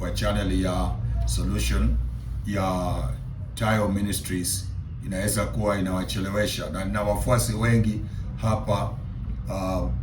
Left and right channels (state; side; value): identical; both; correlation 1.00